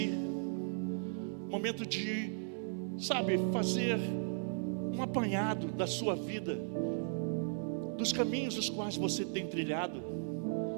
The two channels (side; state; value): left; silent; digital silence